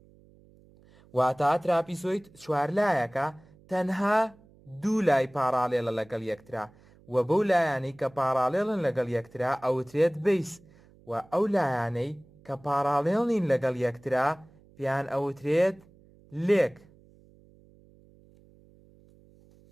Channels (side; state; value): right; noise; hum, 27 dB below the sound